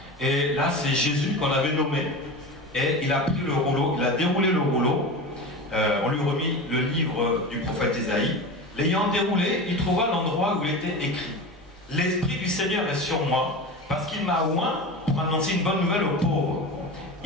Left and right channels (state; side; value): normal; both; correlation 0.28